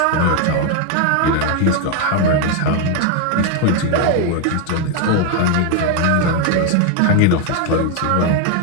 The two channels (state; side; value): different; both; correlation 0.01